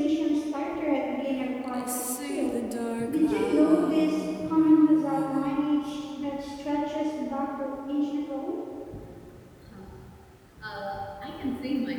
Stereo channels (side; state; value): both; identical; correlation 1.00